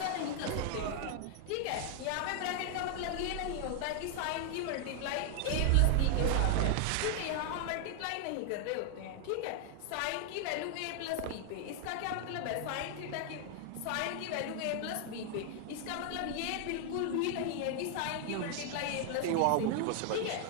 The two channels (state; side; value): different; both; correlation 0.00